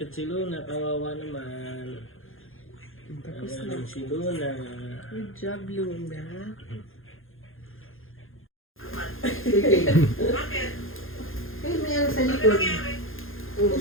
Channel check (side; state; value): right; late; 0.60 ms